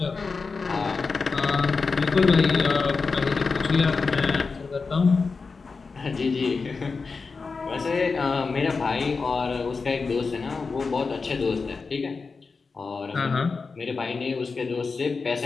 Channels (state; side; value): quieter; right; 4.5 dB